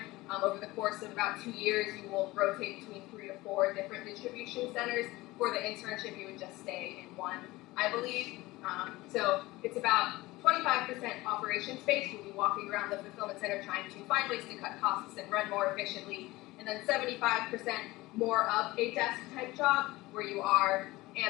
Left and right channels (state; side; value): quieter; right; 19.7 dB